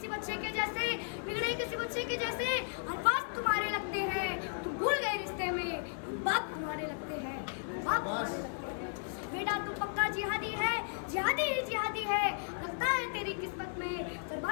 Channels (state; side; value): silent; right; 54 dB below the other